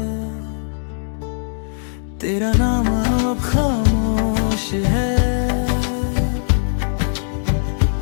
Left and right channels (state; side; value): silent; right; digital silence